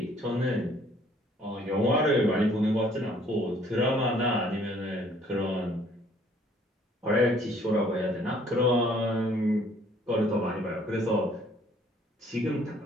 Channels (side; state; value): both; normal; correlation 0.60